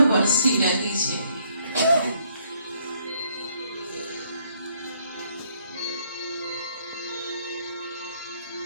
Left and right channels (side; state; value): both; inverted; correlation -0.68